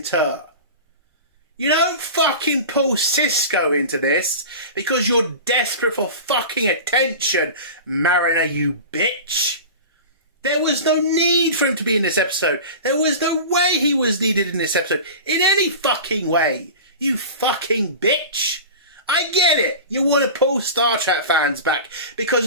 You don't fucking pull Cisco into this because you're desperate for fucking attention, Mariner, you bitch. There was no need for him to be in this episode. There was no way he was needed in this episode. In any fucking way. You fucking bitch. I get it. You want to pull Star Trek fans back because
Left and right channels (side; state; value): both; inverted; correlation -0.32